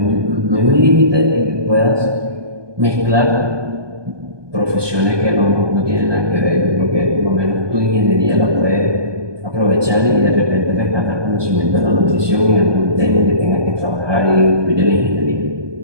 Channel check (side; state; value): left; late; 1.2 ms